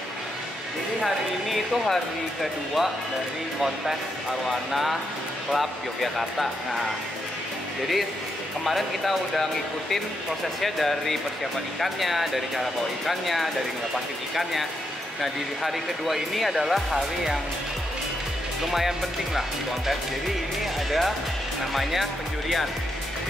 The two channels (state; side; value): normal; both; correlation 0.81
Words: Jadi hari ini itu hari kedua dari kontes Arwana Club Yogyakarta. Nah, jadi kemarin kita udah ngikutin prosesnya dari persiapan ikannya, dari cara bawa ikannya, dari ngelepasin ikannya. Nah, di hari kedua ini adalah hari yang lumayan penting lah di kontes. Jadi ini ada namanya penjurian.